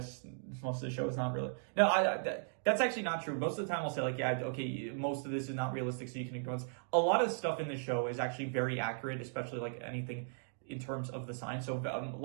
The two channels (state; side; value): silent; left; digital silence